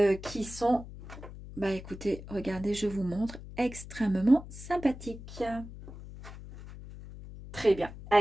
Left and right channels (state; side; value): noise; left; hum, 14 dB below the sound